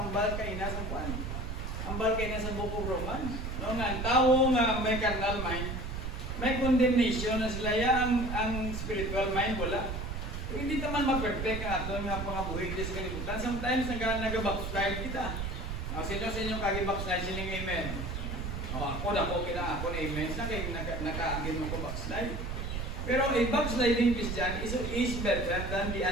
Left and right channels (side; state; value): right; noise; rumble, 4 dB below the sound